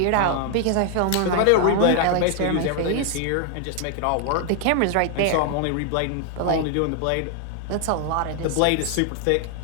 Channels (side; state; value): both; different; correlation 0.00